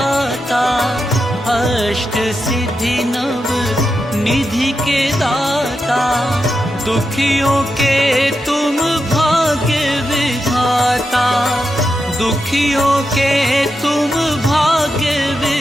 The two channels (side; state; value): both; normal; correlation 0.87